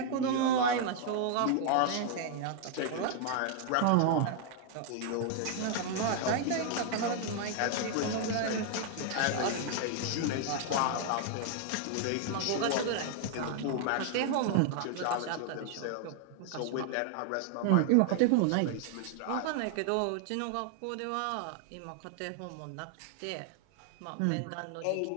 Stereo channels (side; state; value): both; different; correlation 0.00